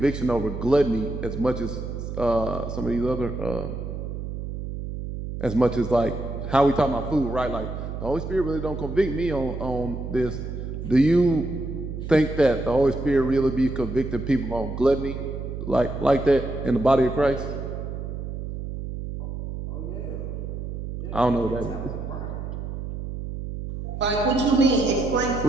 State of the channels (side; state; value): right; noise; hum, 6 dB below the sound